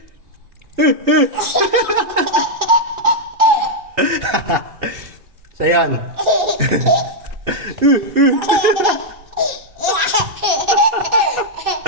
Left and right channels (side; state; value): left; late; 2.7 ms